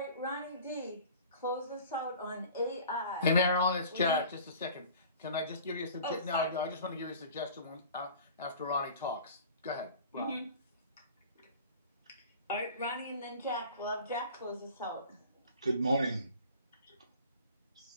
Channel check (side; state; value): both; inverted; correlation -0.43